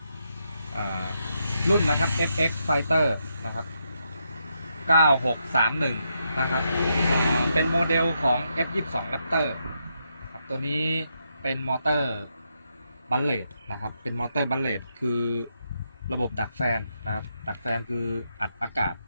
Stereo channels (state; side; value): inverted; both; correlation -0.81